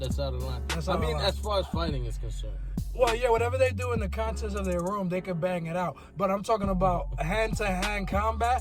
out of line. That's out of line. As far as fighting is concerned. Well, yeah, whatever they do in the contents of their room, they can bang it out. But I'm talking about hand-to-hand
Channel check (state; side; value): identical; both; correlation 1.00